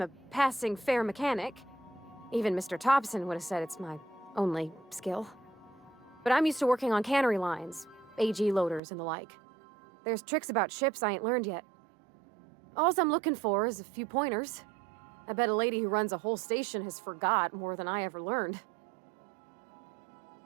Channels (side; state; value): left; drops out; at 8.8 s